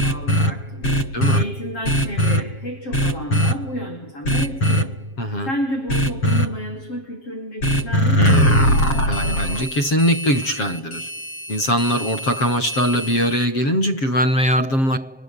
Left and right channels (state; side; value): late; right; 7.5 ms